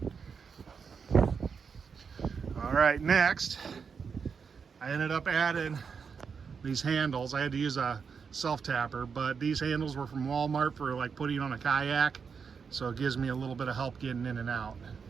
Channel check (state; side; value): quieter; left; 6.0 dB